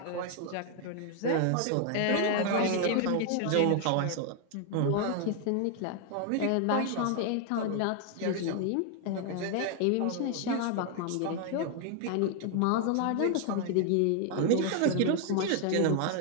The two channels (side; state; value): both; different; correlation 0.00